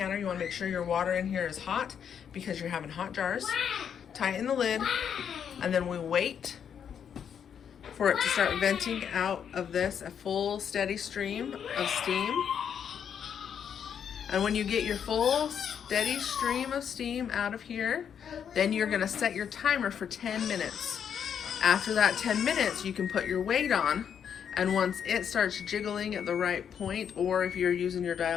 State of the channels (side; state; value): right; quieter; 8.1 dB